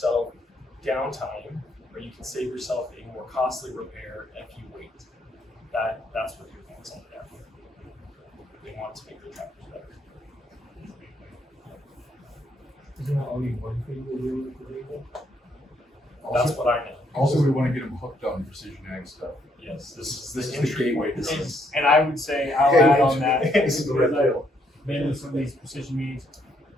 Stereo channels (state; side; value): normal; both; correlation 0.72